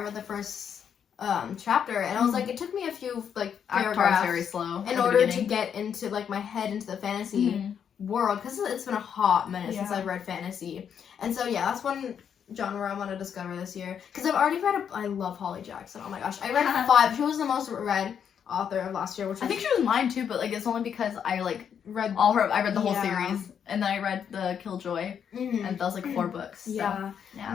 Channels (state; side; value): quieter; right; 8.0 dB